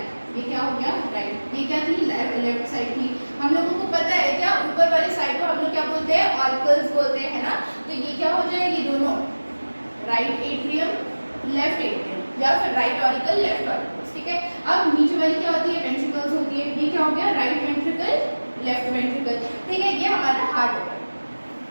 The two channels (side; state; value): both; inverted; correlation -1.00